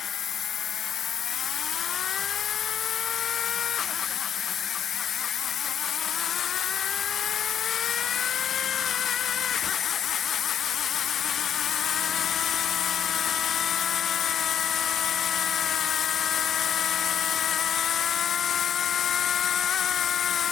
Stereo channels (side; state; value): right; quieter; 8.9 dB